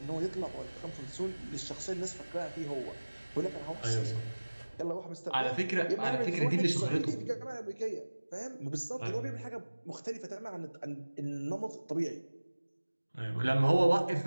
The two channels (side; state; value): both; inverted; correlation -1.00